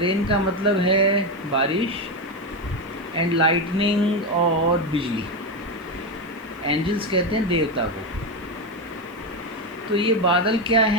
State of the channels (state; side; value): noise; left; hiss, 30 dB below the sound